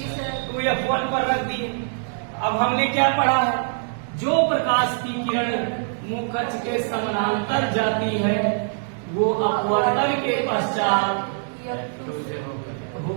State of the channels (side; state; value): left; silent; 63 dB below the other